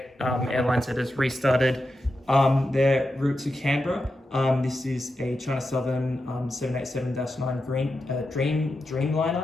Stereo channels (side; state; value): both; normal; correlation 0.89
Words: that has restarted their route to Canberra. This is a China Southern 787-9